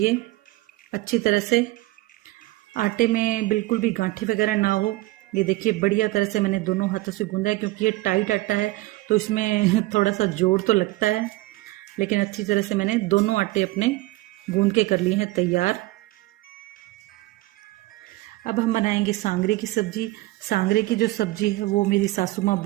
अच्छी तरह से। आटे में बिल्कुल भी गांठी वगैरह ना हो। ये देखिए बढ़िया तरह से मैंने दोनों हाथों से गूंदा है, क्योंकि ये टाइट आटा है तो इसमें थोड़ा सा जोर तो लगता है, लेकिन अच्छी तरह से मैंने दोनों आटे अपने गूंद के कर लिए हैं तैयार। अब हम बनाएंगे सांगरे की सब्ज़ी। सांगरे की जो सब्ज़ी है वो मेरी सासू माँ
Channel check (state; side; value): quieter; left; 19.2 dB